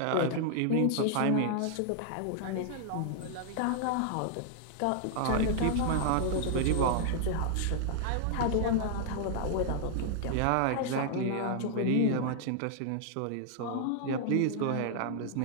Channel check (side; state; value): both; different; correlation 0.00